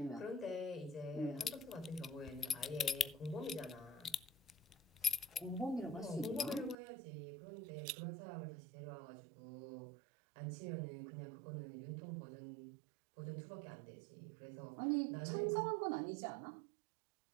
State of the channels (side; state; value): left; drops out; at 6.8 s